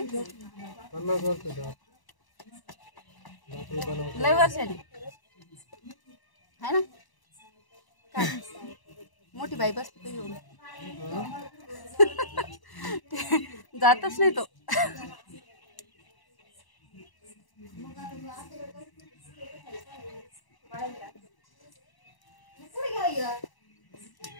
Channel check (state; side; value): late; right; 1.0 ms